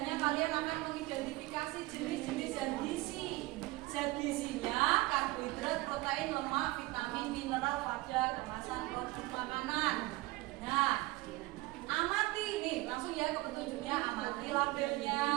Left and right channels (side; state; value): left; quieter; 20.4 dB